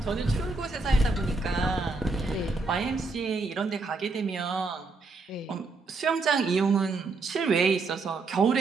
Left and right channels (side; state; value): left; quieter; 3.8 dB